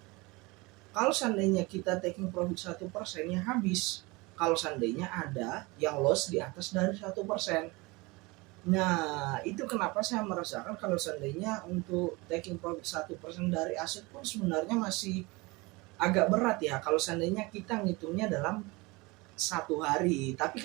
kalau seandainya kita taking profit 1%, ya habis. Kalau seandainya ada yang loss di atas dari 1%. Nah, itu kenapa saya merasakan kalau seandainya untuk taking profit 1% dari aset pun sebenarnya masih agak berat ya kalau seandainya kita ngitungnya dalam satu hari. Tapi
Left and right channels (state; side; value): quieter; left; 24.4 dB